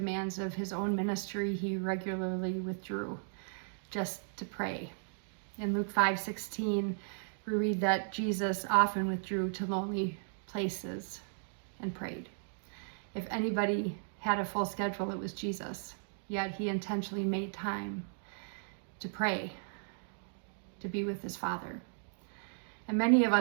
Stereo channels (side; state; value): left; silent; digital silence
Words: of his own ministry, he regularly withdrew just to pray. In Luke 5:16, we read that Jesus often withdrew to lonely places and prayed. If anybody had a full schedule, it was Jesus. Yet he intentionally made time to pray, to be with his Father. And many of